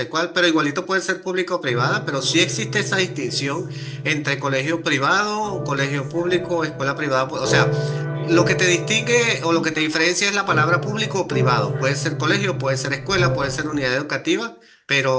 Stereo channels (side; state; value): both; identical; correlation 1.00